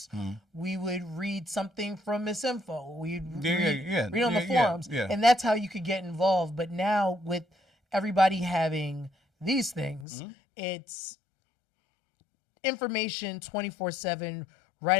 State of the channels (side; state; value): right; drops out; at 10.1 s